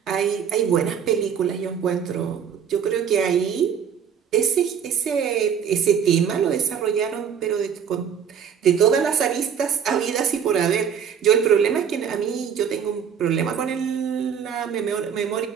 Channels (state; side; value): quieter; left; 7.7 dB